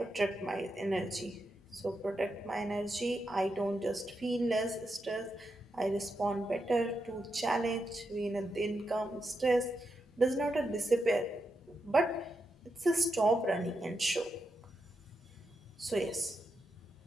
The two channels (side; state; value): both; normal; correlation 0.85